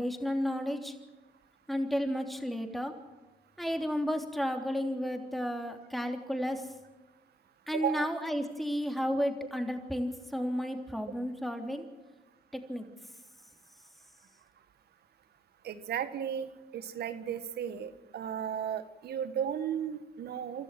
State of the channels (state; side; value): normal; both; correlation 0.74